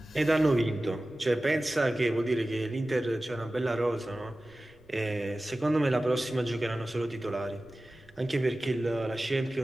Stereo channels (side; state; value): right; noise; rumble, 29 dB below the sound